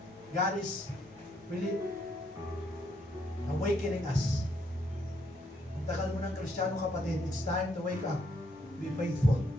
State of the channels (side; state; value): both; normal; correlation 0.73